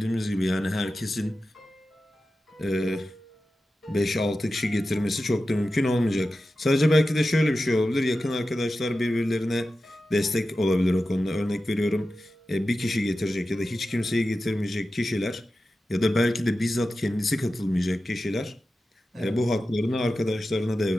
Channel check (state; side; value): normal; both; correlation 0.93